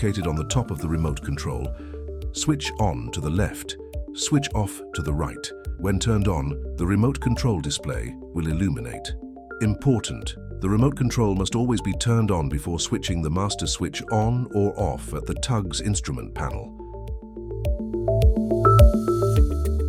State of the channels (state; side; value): identical; both; correlation 1.00